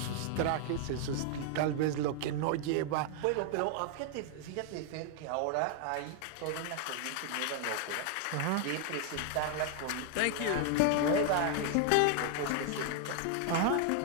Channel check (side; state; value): both; different; correlation 0.00